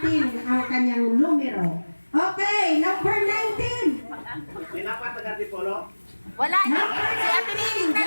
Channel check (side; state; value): both; inverted; correlation -1.00